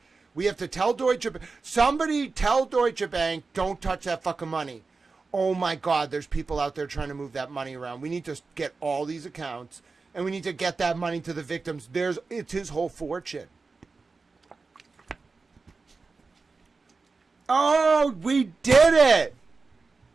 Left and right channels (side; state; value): left; quieter; 4.2 dB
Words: We have to tell Deutsche Bank. Somebody tell Deutsche Bank, don't touch that fucking money. Oh, my God, there's people out there trying to move that money around. We need to get all these accounts, and we need to get that money to the victims. It's his whole fortune. Oh, we did it.